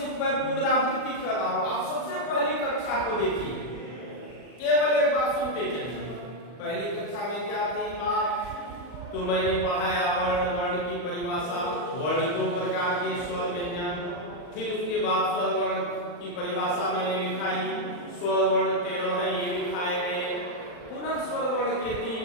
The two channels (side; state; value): right; late; 40 ms